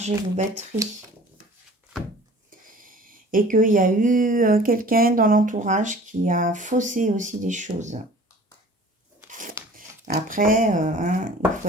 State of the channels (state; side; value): normal; both; correlation 0.47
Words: vos batteries. Et qu'il y a eu quelqu'un dans l'entourage qui a faussé aussi des choses. Après, hein, il